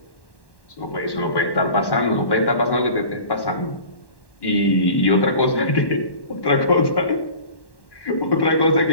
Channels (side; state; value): right; late; 1.1 ms